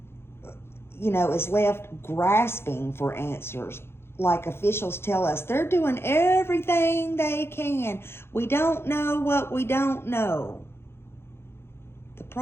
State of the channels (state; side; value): late; right; 0.12 ms